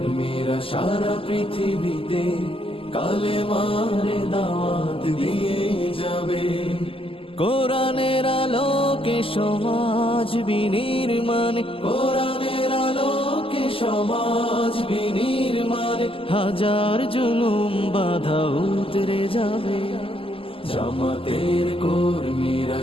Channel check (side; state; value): right; late; 0.26 ms